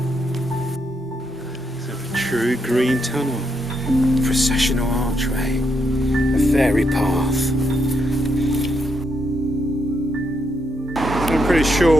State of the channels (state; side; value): normal; both; correlation 0.79